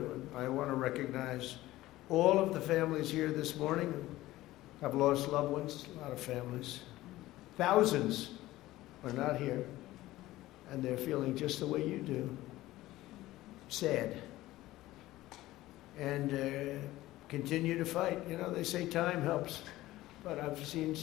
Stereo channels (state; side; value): quieter; right; 16.7 dB